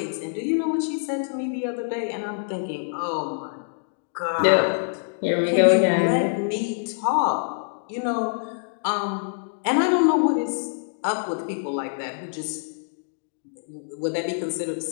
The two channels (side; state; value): right; silent; digital silence